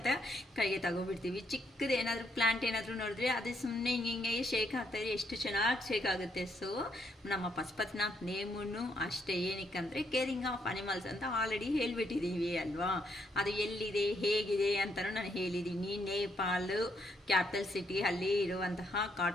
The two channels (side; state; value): both; normal; correlation 0.75